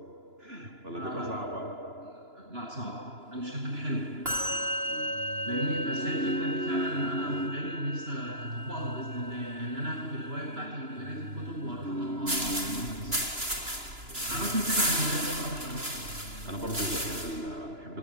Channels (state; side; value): late; left; 2.9 ms